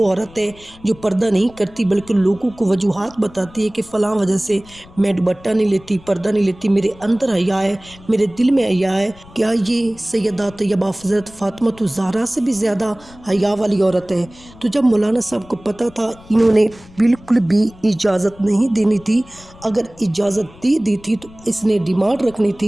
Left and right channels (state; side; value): noise; left; rumble, 23 dB below the sound